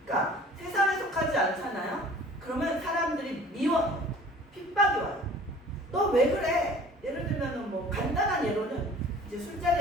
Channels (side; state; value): both; normal; correlation 0.48